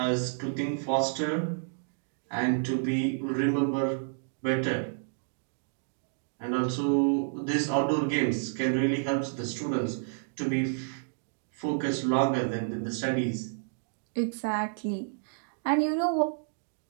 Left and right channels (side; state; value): left; silent; digital silence